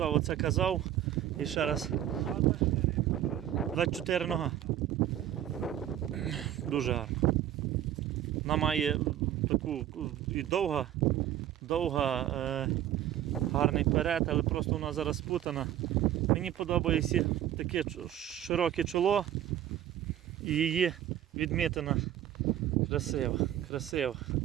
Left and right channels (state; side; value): quieter; left; 11.7 dB